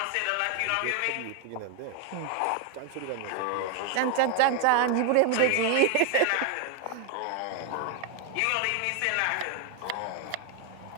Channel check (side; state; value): both; different; correlation 0.01